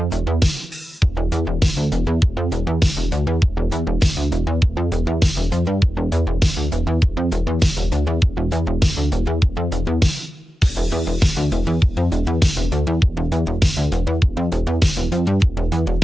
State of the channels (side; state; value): both; normal; correlation 0.92